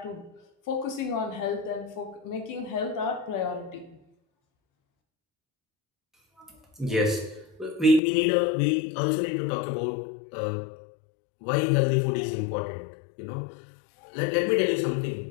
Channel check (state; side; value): drops out; right; at 8.0 s